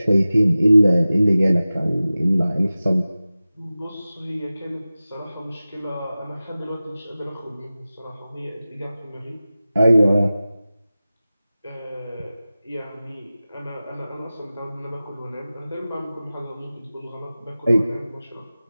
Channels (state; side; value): inverted; both; correlation -0.96